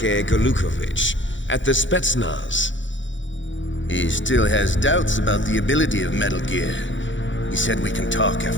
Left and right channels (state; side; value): late; right; 0.55 ms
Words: Golukovich, at the Spetsnaz? He still has doubts about the ability of Metal Gear. He said we can talk